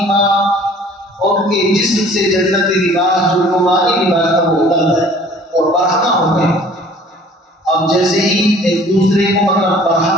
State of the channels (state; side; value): normal; both; correlation 0.51